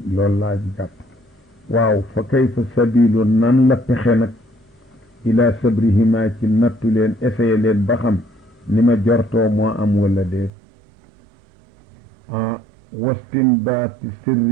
loolu laa jàpp waaw fa kayfa sabilu nan la pexe nag ila sabrihima ci nattu leen essayé leen ba xam ni ma jortoo moo am wala déet wastimbaati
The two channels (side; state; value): left; drops out; at 10.5 s